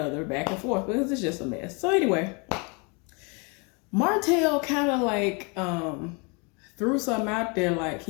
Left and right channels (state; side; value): quieter; right; 32.3 dB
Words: back and forth, because it's just a mess. So anyway, Martell kind of like threw something out there, like